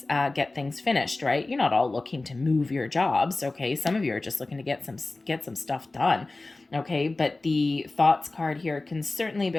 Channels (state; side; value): quieter; right; 3.2 dB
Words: finished, right? You're not all looking to move your jobs, okay? Some of you are just looking to get some stuff done. Okay, but the Thoughts card here can certainly